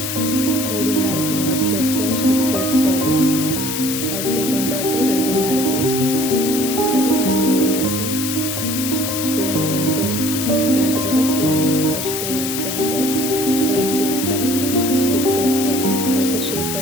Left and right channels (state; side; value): noise; left; hiss, 4 dB below the sound